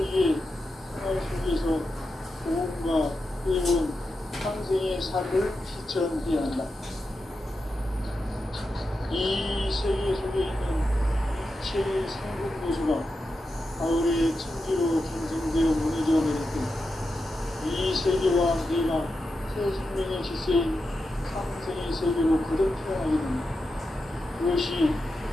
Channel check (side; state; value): both; normal; correlation 0.89